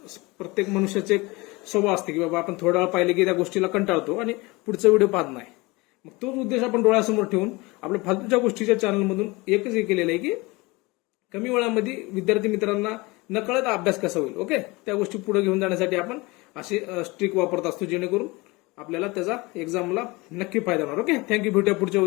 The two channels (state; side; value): quieter; right; 23.8 dB